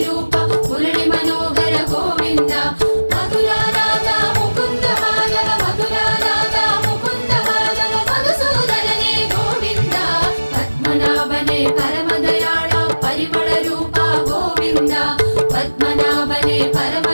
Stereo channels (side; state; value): both; inverted; correlation -1.00